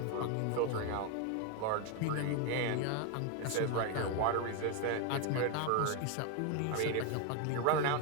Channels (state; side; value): different; both; correlation 0.01